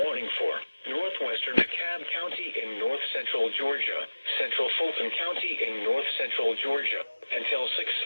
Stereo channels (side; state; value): both; inverted; correlation -1.00